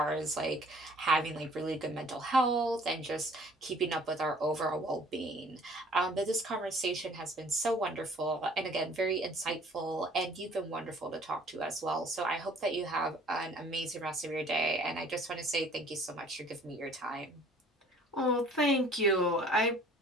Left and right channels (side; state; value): both; normal; correlation 0.54